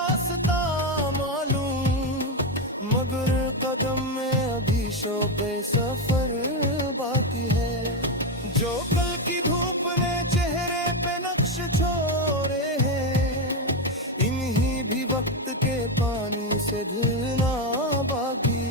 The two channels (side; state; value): both; normal; correlation 0.09